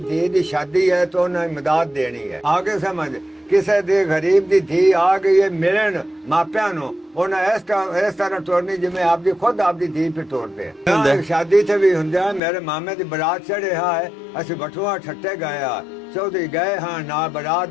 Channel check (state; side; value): drops out; right; at 12.4 s